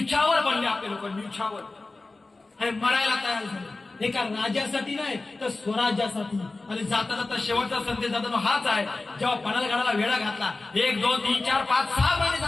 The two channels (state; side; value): quieter; right; 3.3 dB